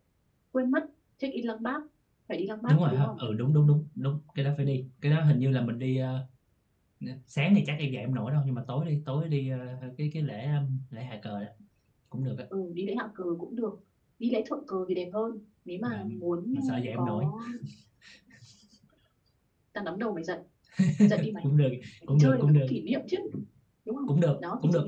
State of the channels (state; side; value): identical; both; correlation 1.00